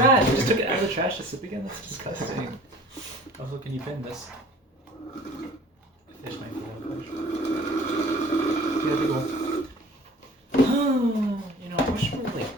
You just took it out of the trash to sip again. That's disgusting. Also, can you bin this? Fish my food out of the big one. I wish we were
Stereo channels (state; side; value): normal; both; correlation 0.47